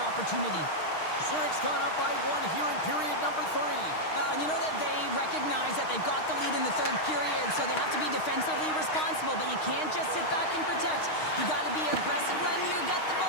opportunity. Zurich's gone up by 1 here in period number 3. Well, you know that they recognize that they've got the lead in the third period, so they have to be defensively responsible, but you can't just sit back and protect. You got to be aggressive when you get the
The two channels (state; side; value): late; right; 6.4 ms